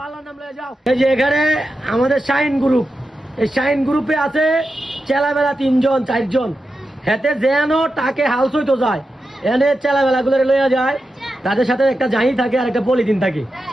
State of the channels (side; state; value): both; normal; correlation 0.90